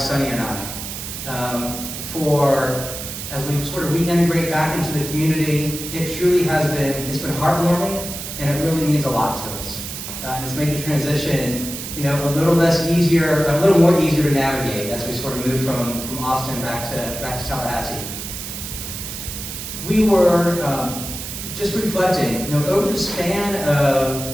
and I. As we sort of reintegrate back into the community, it truly has been, it's been heartwarming, and it really means a lot to us. And it's made the transition, a little more easier to navigate as we sort of move from Austin back to Tallahassee. We were just reflecting, over the span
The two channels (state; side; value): noise; right; hiss, 8 dB below the sound